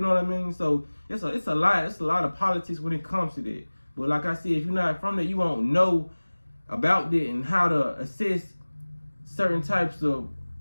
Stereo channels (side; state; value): both; inverted; correlation -1.00